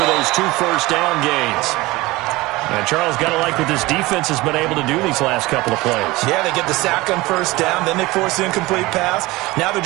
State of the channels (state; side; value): quieter; left; 20.6 dB